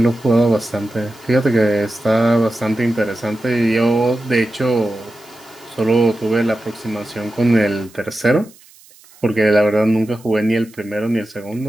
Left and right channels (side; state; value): right; noise; hiss, 26 dB below the sound